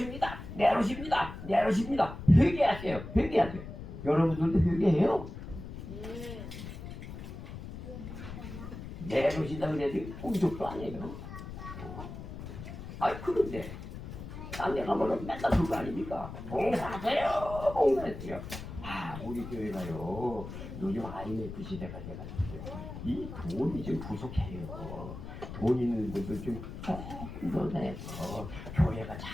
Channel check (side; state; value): left; noise; rumble, 10 dB below the sound